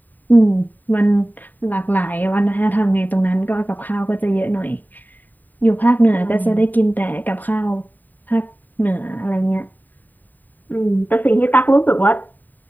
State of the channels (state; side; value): late; right; 0.087 ms